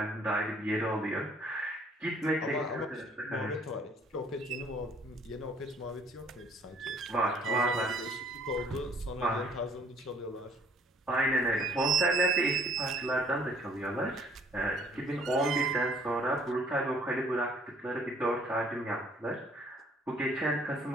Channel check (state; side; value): normal; both; correlation 0.59